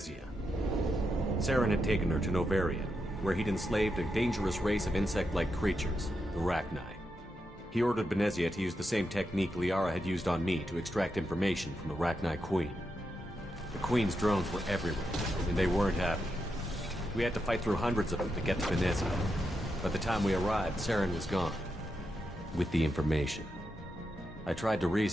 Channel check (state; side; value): normal; both; correlation 0.85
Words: Saren had taken her to Novaria, where he'd enslaved a dangerous race of insect-like creatures, the Rachni. He ordered Benezia to use the same technique Liara had used on me to extract information from the Rachni Queen. The Queen's drones were everywhere, and they weren't happy. We had to fight through hundreds of them to get to Benezia. By the time we arrived, Saren was gone. With the information. I tried to